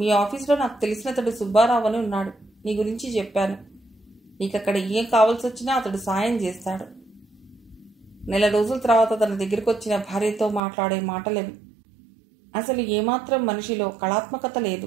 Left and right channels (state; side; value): drops out; left; at 10.6 s